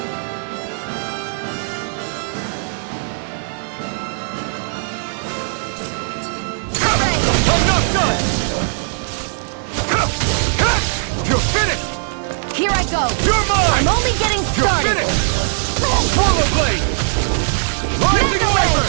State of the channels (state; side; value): silent; left; digital silence